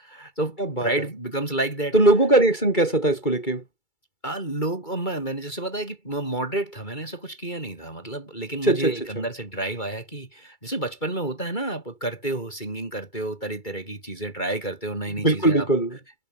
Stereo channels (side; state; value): right; late; 2.3 ms